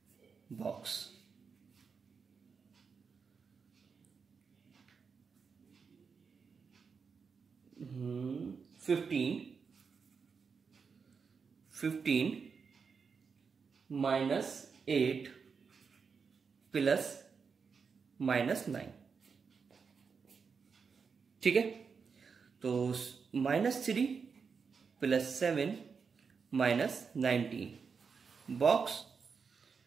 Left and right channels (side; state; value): left; quieter; 5.6 dB